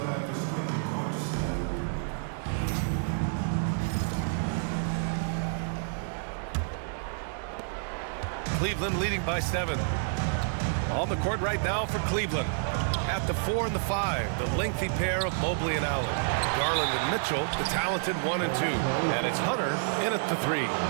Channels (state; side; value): silent; left; digital silence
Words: Cleveland leading by 7. On the court right now for Cleveland. At the 4 and the 5, the lengthy pair of Mobley and Allen. Garland and Mitchell, the talented 1 and 2. And it's Hunter in at the 3.